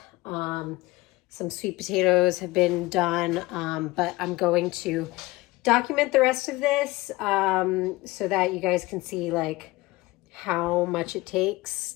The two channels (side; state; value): right; quieter; 20.5 dB